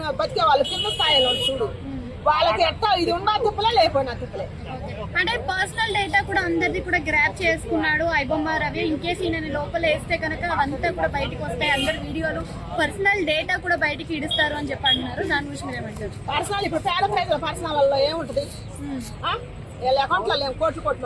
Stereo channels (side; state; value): both; identical; correlation 1.00